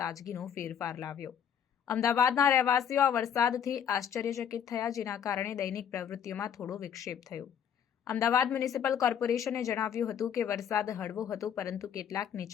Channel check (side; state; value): right; quieter; 8.5 dB